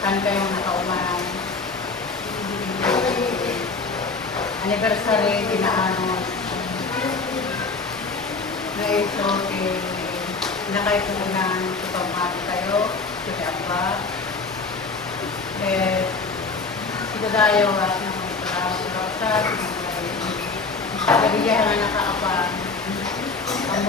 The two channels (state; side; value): quieter; right; 4.1 dB